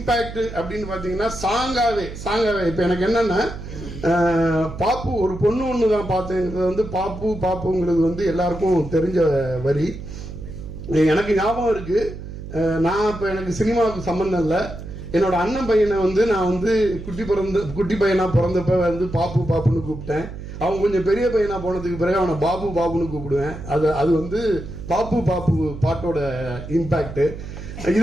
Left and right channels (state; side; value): noise; right; hum, 11 dB below the sound